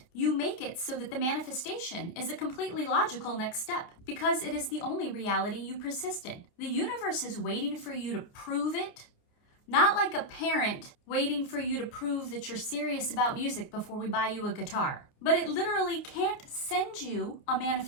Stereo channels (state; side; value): late; right; 29 ms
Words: You make it so that the manifestation is a completely logical next step because it is the only reality you persist in. The universe is waiting for you to prove it, not like a parent waiting for you to prove that you're serious about music before we buy you a guitar. But it literally can't send you a